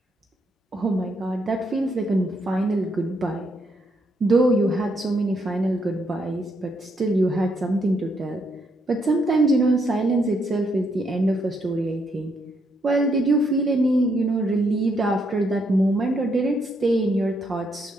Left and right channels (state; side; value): normal; both; correlation 0.75